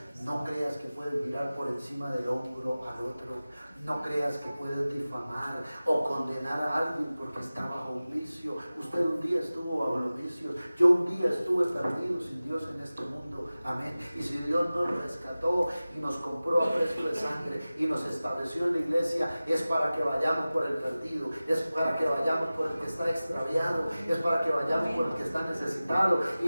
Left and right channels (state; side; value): inverted; both; correlation -0.97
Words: No creas que puedes mirar por encima del hombro al otro. No creas que puedes difamar o condenar a alguien porque está bajo un vicio. Usted un día estuvo bajo los vicios. Yo un día estuve perdido sin Dios en este mundo. Amén. Y si Dios nos rescató y nos compró a precio de sangre y nos estableció en la iglesia, es para que vayamos por el perdido, es para que vayamos por el que está extraviado, es para que vayamos por el que está necesitado y